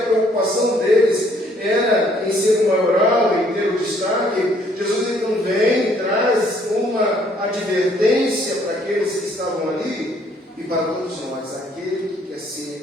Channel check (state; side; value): normal; both; correlation 0.64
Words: preocupação deles era em ser o maioral, em ter o destaque. Jesus então vem e traz uma advertência para aqueles que estavam ali e para todos nós: aquele que quer